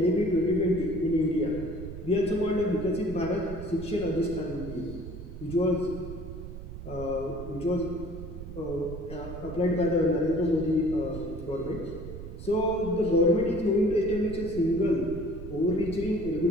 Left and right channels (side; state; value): right; noise; rumble, 10 dB below the sound